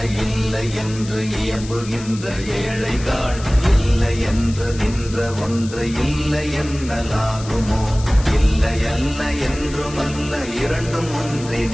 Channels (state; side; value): noise; left; hiss, 15 dB below the sound